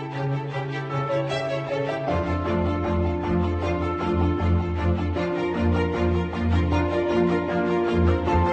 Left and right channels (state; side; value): identical; both; correlation 1.00